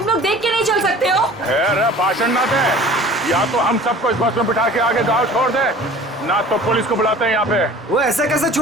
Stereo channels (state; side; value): normal; both; correlation 0.45